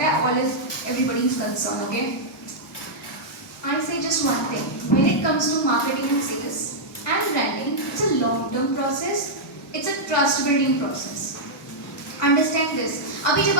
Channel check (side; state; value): both; normal; correlation -0.07